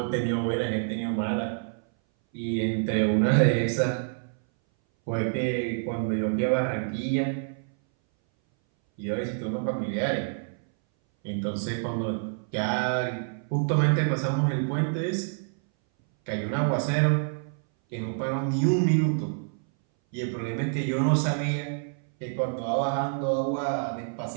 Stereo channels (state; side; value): silent; left; 59 dB below the other